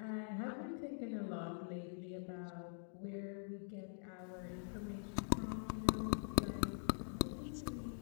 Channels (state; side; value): silent; right; digital silence